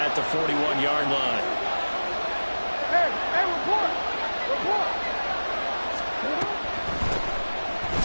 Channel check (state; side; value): inverted; both; correlation -1.00